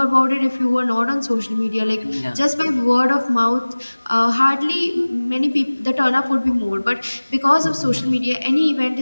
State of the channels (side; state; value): both; inverted; correlation -1.00